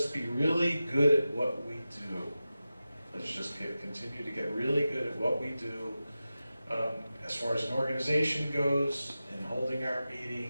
be really good at what we do. Let's just continue to get really good at what we do. As far as an organization goes, in holding our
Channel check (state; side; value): inverted; both; correlation -0.93